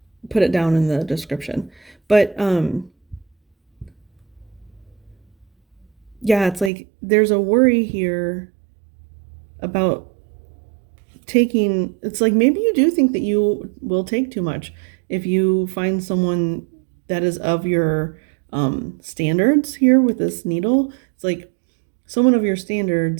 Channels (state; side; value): drops out; left; at 6.7 s